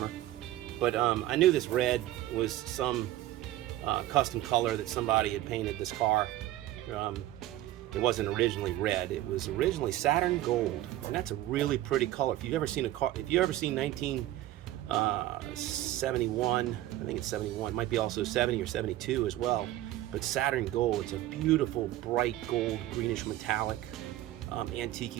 But I knew this red was some custom color that somebody had painted this car. It wasn't originally red. It was originally Saturn Gold, and that's a really pretty color. If you've ever seen a car, if you ever seen 1971, I think it's 71, might be also 70 or 72 as well. But Saturn Gold, it's a beautiful, bright gold, greenish metallic,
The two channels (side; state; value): left; quieter; 14.6 dB